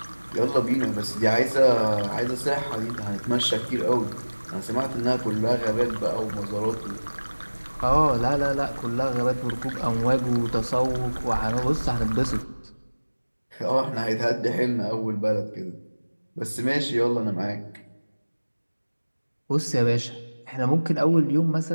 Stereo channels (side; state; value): both; inverted; correlation -1.00